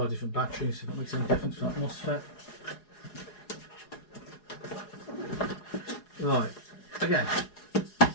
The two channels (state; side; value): late; right; 4.8 ms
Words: different batteries, see if that makes any difference for that MOSFET. Right, again,